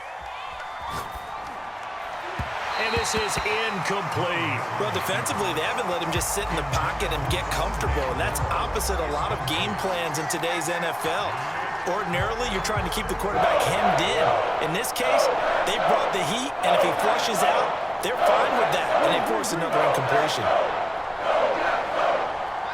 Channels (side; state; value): both; identical; correlation 1.00